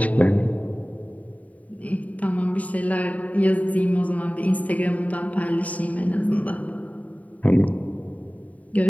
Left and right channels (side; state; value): right; late; 0.071 ms